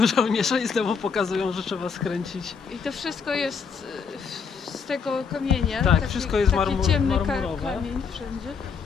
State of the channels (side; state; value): right; quieter; 5.8 dB